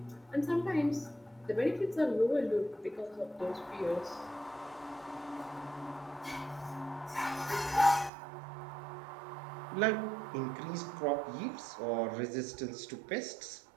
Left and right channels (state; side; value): drops out; left; at 8.1 s